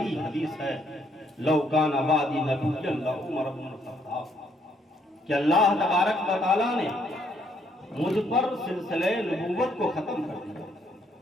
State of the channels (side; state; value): both; normal; correlation 0.70